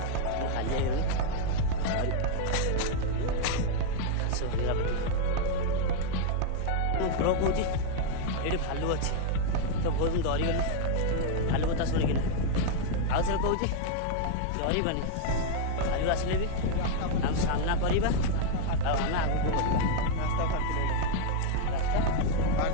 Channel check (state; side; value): different; both; correlation 0.00